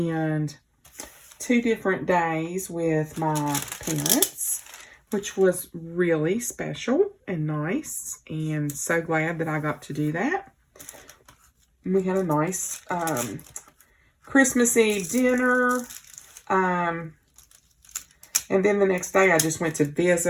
2 different days with my parents, which was really special and nice, and so glad that I got to do that. We had a nice Christmas Eve dinner, and then the next day I just went to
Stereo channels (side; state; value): both; identical; correlation 1.00